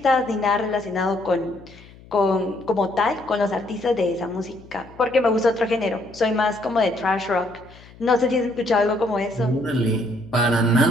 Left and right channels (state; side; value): noise; left; hum, 22 dB below the sound